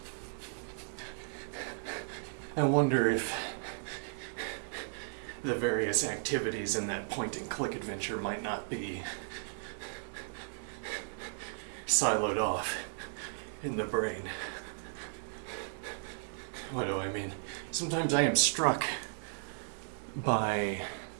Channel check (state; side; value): silent; left; digital silence